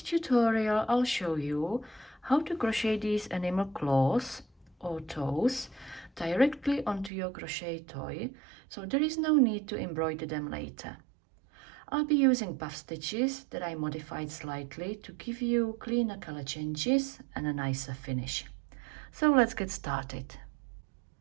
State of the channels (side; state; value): left; drops out; at 7.1 s